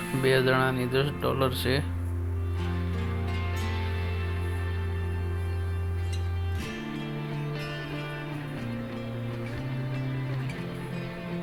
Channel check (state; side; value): identical; both; correlation 1.00